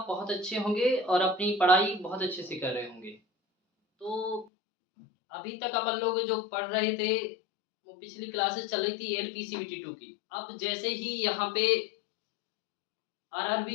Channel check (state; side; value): drops out; right; at 4.5 s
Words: बहुत अच्छे होंगे और अपनी पढ़ाई बहुत अच्छे से कर रहे होंगे। तो अभी तक अपन लोग जो पढ़ रहे थे, वो पिछली क्लासेस चल रही थी एलपीसीबीटी 2 की। अब जैसे ही यहाँ पे